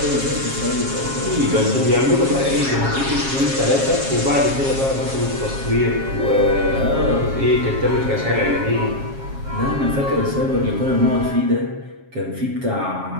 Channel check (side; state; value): left; late; 7.4 ms